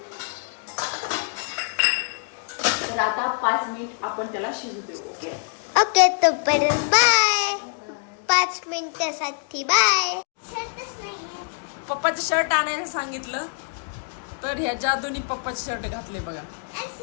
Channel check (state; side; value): silent; right; digital silence